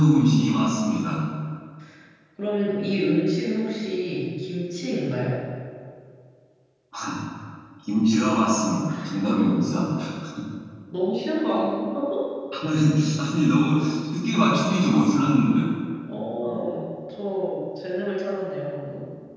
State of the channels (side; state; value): both; identical; correlation 1.00